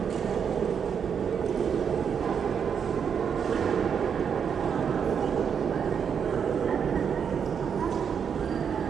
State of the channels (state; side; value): quieter; left; 7.2 dB